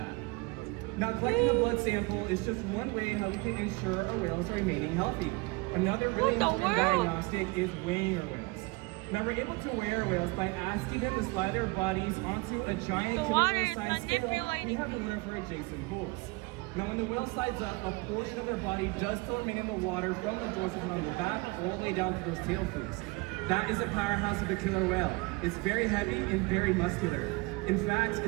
Now, collecting a blood sample is just one way how we can ensure our whales are remaining healthy. Another really important diagnostic is weighing our whales. Now, we're able to weigh our whales by asking them to slide their bodies onto a giant killer whale-sized scale we have in one of our adjacent pools. Now, when the whale slides up, a portion of their body does still remain in the water from the joints on their back all the way down to those tail flukes. That is a powerhouse of a killer whale. It's very heavy and very muscular. In fact,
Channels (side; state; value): left; quieter; 26.2 dB